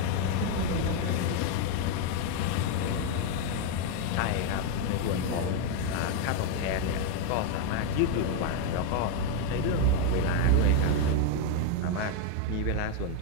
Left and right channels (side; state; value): both; different; correlation 0.01